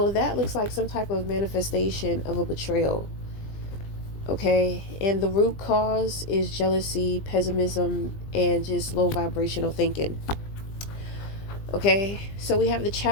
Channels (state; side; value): late; right; 20 ms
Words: that looks like some type of manifestation of a betrayal. Okay, and the root cause is jealousy, pessimism, and just low vibrational thinking. Okay, so we have the